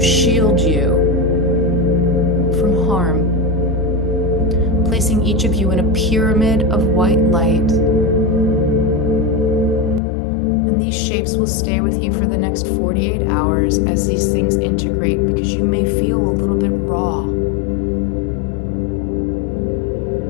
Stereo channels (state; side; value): drops out; right; at 10.0 s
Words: shield you from harm, placing each of you in a pyramid of white light. And these shapes will stay with you for the next 48 hours as these things integrate, because you may feel a little bit raw.